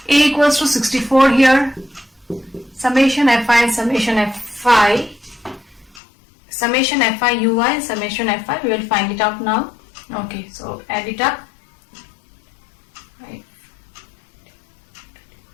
A equals to 64 here. Summation fi and summation fi. Summation fi ui and summation fi. We will find it out now. Okay, so add it up. Right.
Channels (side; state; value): right; drops out; at 6.0 s